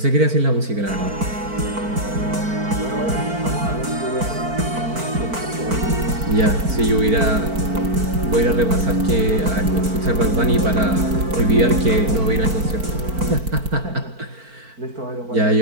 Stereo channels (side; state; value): left; late; 4.5 ms